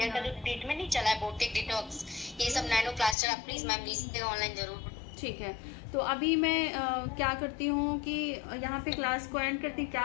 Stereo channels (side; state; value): right; drops out; at 3.2 s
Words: का जो ट्रीटमेंट नहीं चला है, बोटेक डिटॉक्स, ये सब नैनो प्लास्टर, आप प्लीज मैम लीजिएगा ऑनलाइन जरूर। ठीक है। तो अभी मैं क्या करती हूँ कि यहाँ पे क्लास को एंड करती,